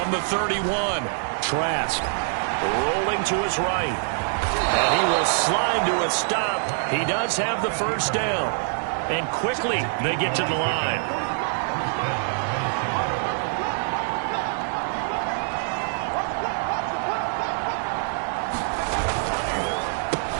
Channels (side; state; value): left; silent; digital silence